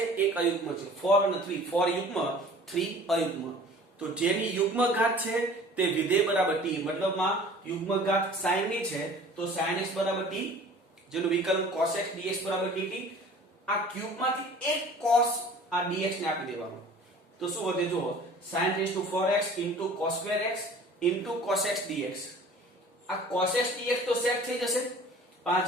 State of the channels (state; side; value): normal; both; correlation 0.47